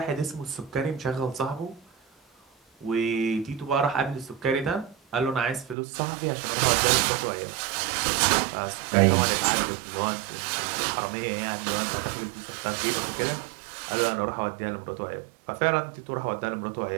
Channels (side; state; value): left; drops out; at 5.8 s